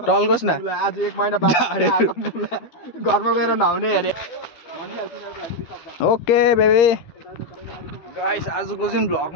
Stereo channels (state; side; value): late; right; 12 ms